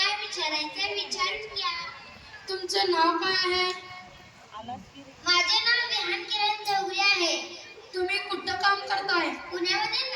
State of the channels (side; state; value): both; identical; correlation 1.00